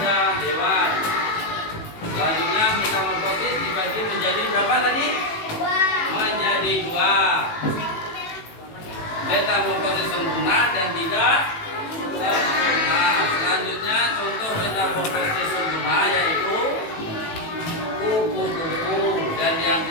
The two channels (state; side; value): late; right; 18 ms